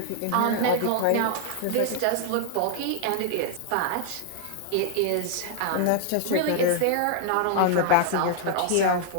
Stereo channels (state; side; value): different; both; correlation 0.00